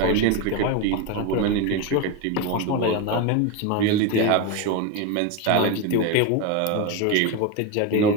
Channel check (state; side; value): different; both; correlation 0.03